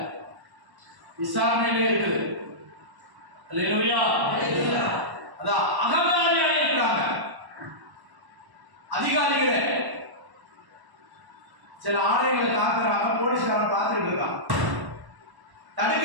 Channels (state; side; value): late; left; 1.1 ms